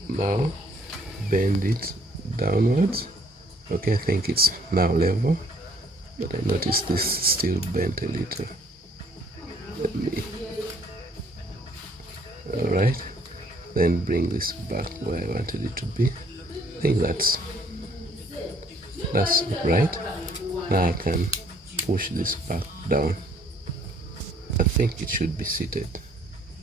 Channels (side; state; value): both; normal; correlation 0.63